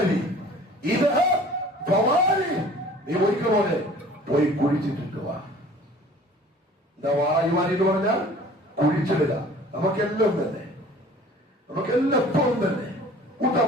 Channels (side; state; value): both; normal; correlation 0.48